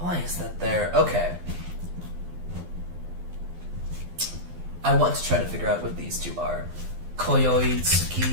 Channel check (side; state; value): left; late; 12 ms